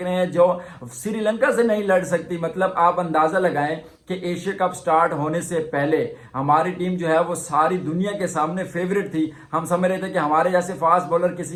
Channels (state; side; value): identical; both; correlation 1.00